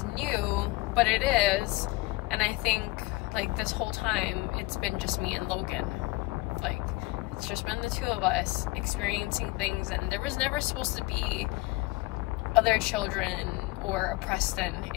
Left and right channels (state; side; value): quieter; right; 21.2 dB